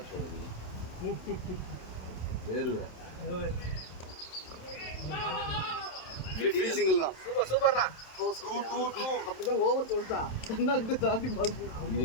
போடுறது தான். வேறுவேன் சிங்கிள் தான். சூப்பர்ண்ணா. அப்படிதான் ஓவர் சொல்லிட்டான். கண்ணாக்கிட்ட தாண்டி பால் போய் இது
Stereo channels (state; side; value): late; right; 27 ms